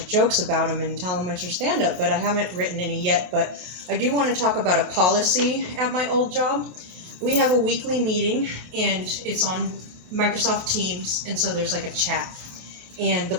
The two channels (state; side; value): late; left; 28 ms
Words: jokes about him and tell him it's your stand-up, but I haven't written any yet. But I do want to talk about a policy at my old job. We have a weekly meeting, and it's on Microsoft Teams, and so there's like a chat. And the